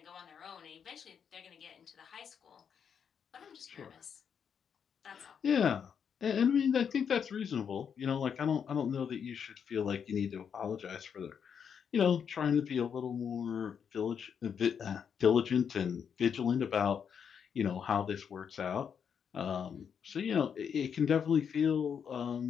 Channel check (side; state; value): right; quieter; 7.4 dB